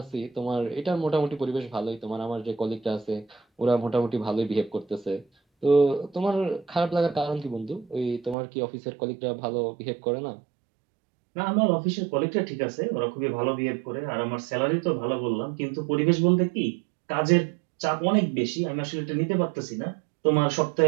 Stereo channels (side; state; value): left; drops out; at 8.3 s